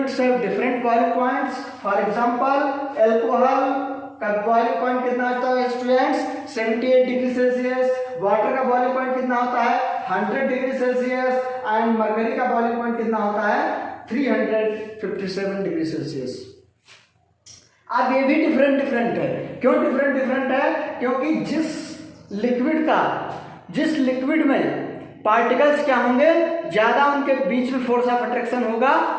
have different boiling points. For example alcohol का बॉइलिंग पॉइंट कितना होता है स्टूडेंट्स? 78 degree Celsius. वाटर का बॉइलिंग पॉइंट कितना होता है? 100 डिग्री सेल्सियस। एंड मरकरी का बॉइलिंग पॉइंट कितना होता है? 357 डिग्री सेल्सियस। अब ये भी डिफरेंट है। क्यों डिफरेंट है? क्योंकि जिस लिक्विड में पार्टिकल्स क्या होंगे ज़्यादा, उनके बीच में फोर्स ऑफ अट्रैक्शन होगा,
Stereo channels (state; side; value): identical; both; correlation 1.00